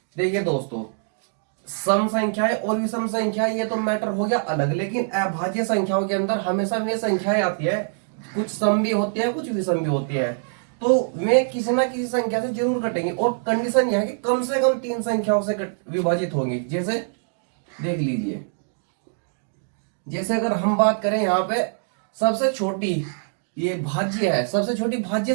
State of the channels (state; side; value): silent; left; digital silence